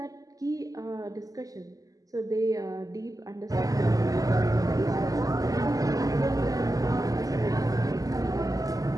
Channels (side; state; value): left; late; 0.17 ms